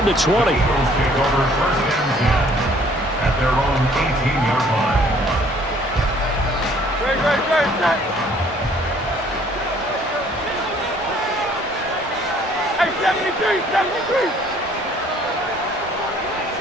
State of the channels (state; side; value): normal; both; correlation 0.59